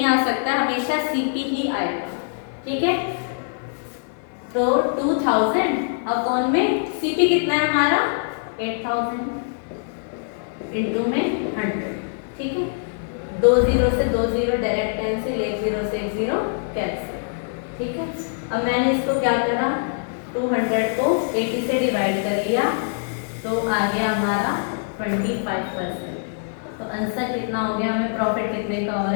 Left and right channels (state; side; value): silent; right; digital silence